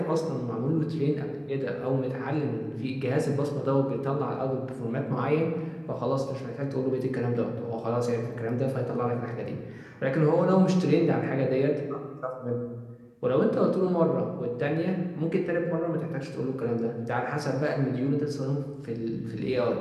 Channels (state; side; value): identical; both; correlation 1.00